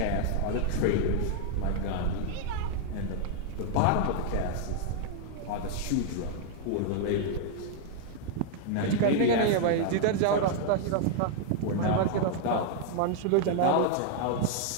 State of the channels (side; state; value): both; different; correlation 0.00